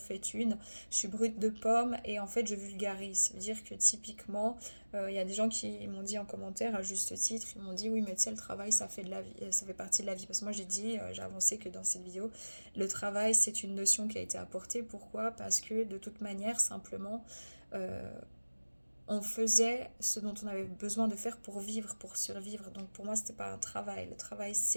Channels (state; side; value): inverted; both; correlation -1.00